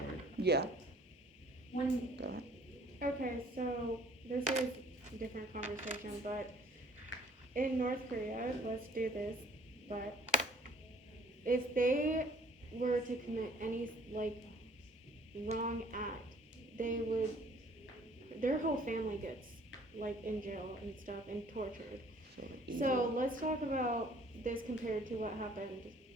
Yeah. When, Go ahead. Okay, so this is a different conversation, but in North Korea, let's do this, but if they were to commit any, like, wrong act, they would, their whole family gets, like, in jail and stuff and tortured. So let's talk about this compared to what happened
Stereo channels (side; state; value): both; normal; correlation 0.56